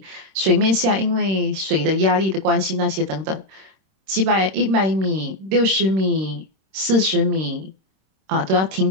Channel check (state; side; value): late; left; 26 ms